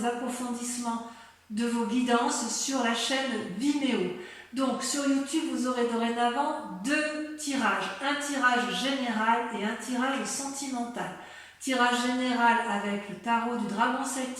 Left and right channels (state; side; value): identical; both; correlation 1.00